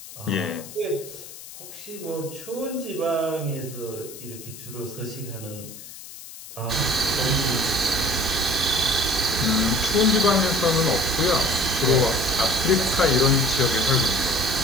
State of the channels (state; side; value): noise; left; hiss, 15 dB below the sound